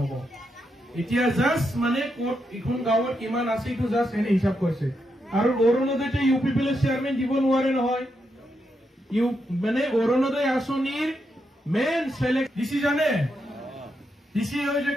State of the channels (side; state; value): both; normal; correlation 0.82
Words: এতিয়া জাস্ট মানে কোট এখন গাঁৱত কিমান আছে তো জাস্ট এনে হিসাব কৰিছে আৰু অৰুণোদয়তে ইউপিপিএলৰ চেয়াৰম্যান দিব নোৱাৰে নহয় মানে অৰুণোদয় আঁচনিৰ মেইন সিলেক্ট ডিসি জানে ডিসি হয় যে